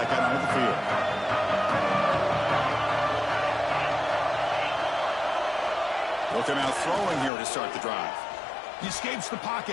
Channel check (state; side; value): drops out; right; at 7.3 s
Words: out onto the field. Looking out throwing here to start the drive. He escapes the